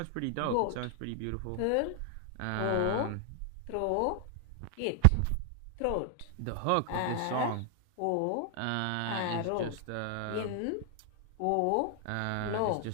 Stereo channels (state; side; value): different; both; correlation 0.00